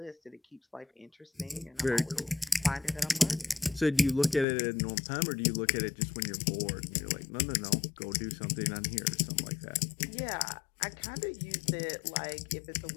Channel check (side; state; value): right; drops out; at 4.5 s